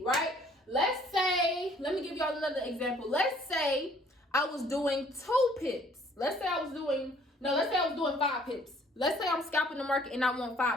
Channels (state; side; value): normal; both; correlation 0.59